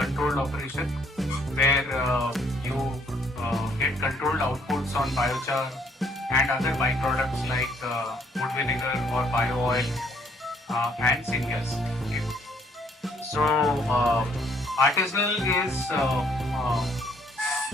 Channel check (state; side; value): normal; both; correlation 0.66